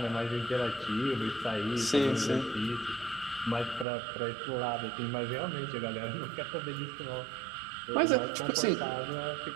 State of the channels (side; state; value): left; drops out; at 3.9 s